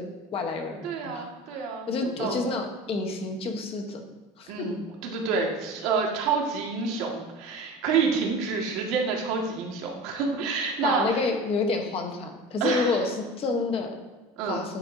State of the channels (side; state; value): both; normal; correlation 0.35